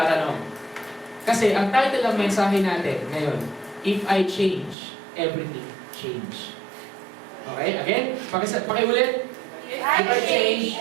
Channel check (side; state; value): left; drops out; at 4.8 s